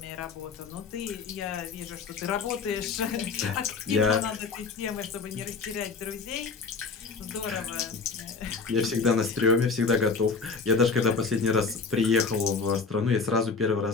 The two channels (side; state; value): right; quieter; 4.6 dB